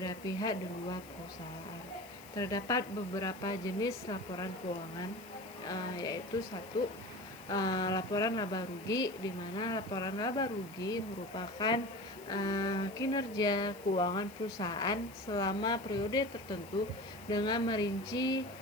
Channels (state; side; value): noise; left; hiss, 21 dB below the sound